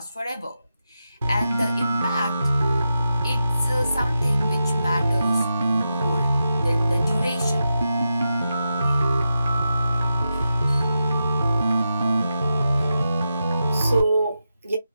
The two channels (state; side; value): inverted; both; correlation -0.88